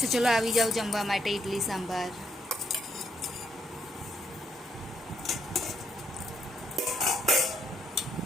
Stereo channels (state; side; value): normal; both; correlation 0.74